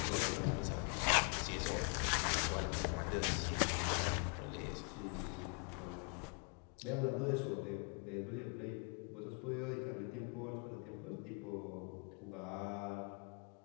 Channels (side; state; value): right; quieter; 37.4 dB